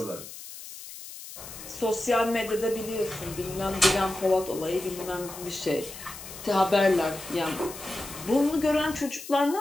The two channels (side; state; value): left; noise; hiss, 13 dB below the sound